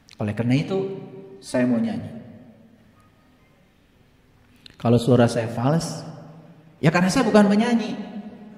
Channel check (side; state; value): both; identical; correlation 1.00